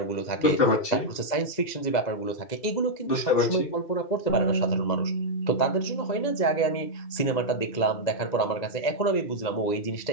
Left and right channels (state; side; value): late; right; 2.0 ms